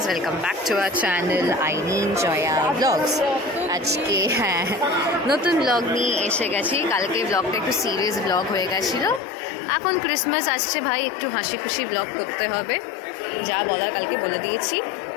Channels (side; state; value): right; drops out; at 9.2 s